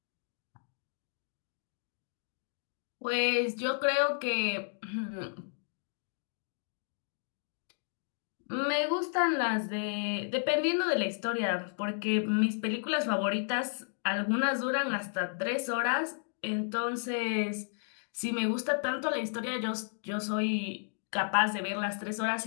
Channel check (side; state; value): right; silent; digital silence